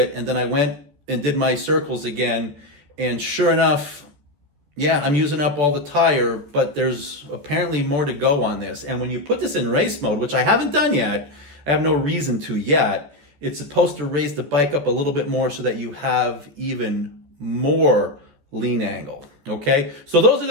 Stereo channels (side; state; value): left; late; 14 ms